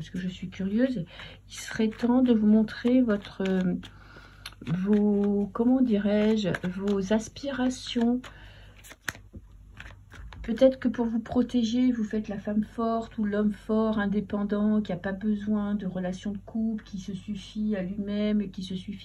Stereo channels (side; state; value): both; identical; correlation 1.00